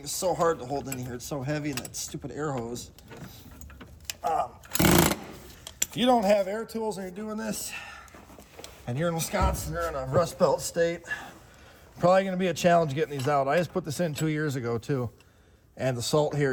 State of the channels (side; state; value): both; identical; correlation 1.00